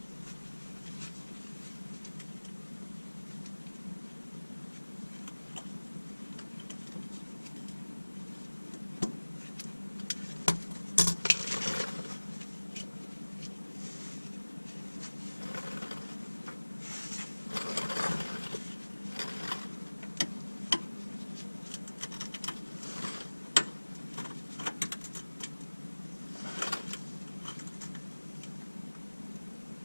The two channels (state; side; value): inverted; both; correlation -1.00